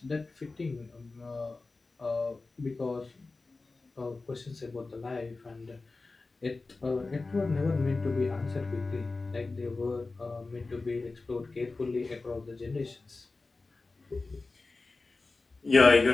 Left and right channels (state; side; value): quieter; right; 3.6 dB